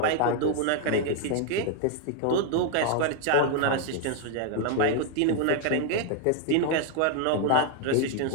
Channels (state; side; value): different; both; correlation 0.00